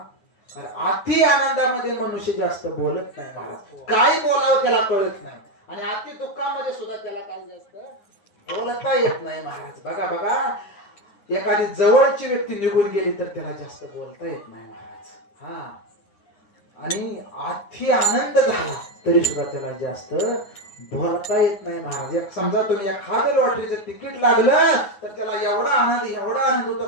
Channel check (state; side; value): late; right; 9.5 ms